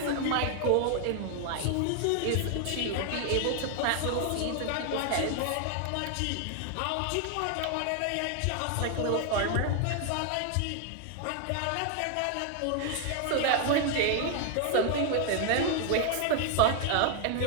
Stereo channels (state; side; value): different; both; correlation 0.00